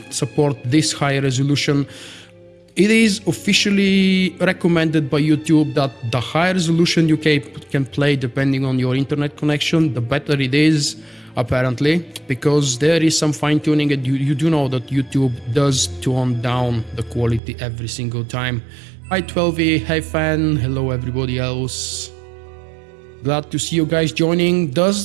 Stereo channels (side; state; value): left; drops out; at 17.4 s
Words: this high resolution, it is officially recommended by YouTube that the higher resolution you can play depending on your internet connection, the better it is, apparently, because there is some fine tuning, and you do know that YouTube does tone down the quality every single time. Hi 12E, hey fan, hello everybody else. Glad to see you guys joining.